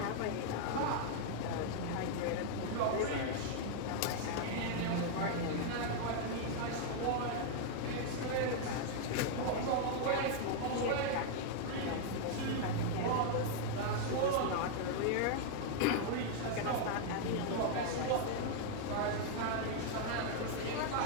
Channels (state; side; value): different; both; correlation 0.00